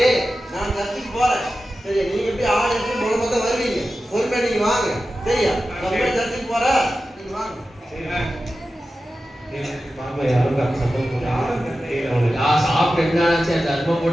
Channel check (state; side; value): normal; both; correlation 0.93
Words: நான் சர்ச்சுக்கு போறேன். சரி, நீங்க எப்படி ஆள் எடுத்து மூலமா தான் வருவீங்க. பொறுமையா நீங்க வாங்க. சரியா? நம்ம சர்ச்சுக்கு போறேன். நீங்க வாங்க. பாப்பா யாரும் சத்தம் போடுறாங்க. யா சாப்பிட்டு என்னாச்சா தர்மம்